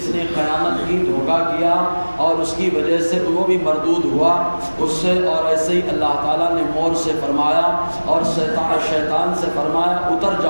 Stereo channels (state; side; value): inverted; both; correlation -1.00